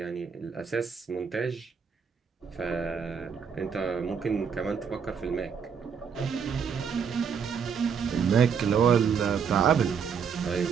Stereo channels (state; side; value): quieter; left; 6.6 dB